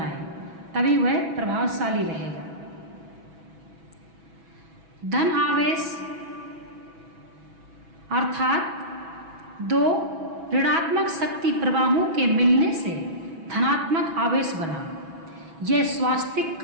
तभी वह प्रभावशाली रहेगा। धन आवेश अर्थात दो ऋणात्मक शक्ति प्रवाहों के मिलने से धनात्मक आवेश बना, यह स्वास्तिक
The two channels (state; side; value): late; left; 6.1 ms